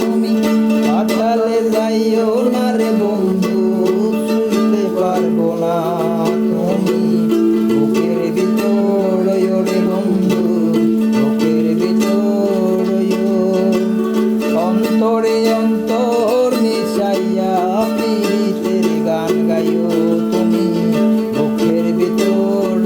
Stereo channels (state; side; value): identical; both; correlation 1.00